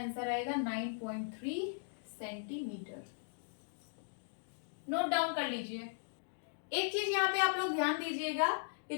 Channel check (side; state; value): right; silent; digital silence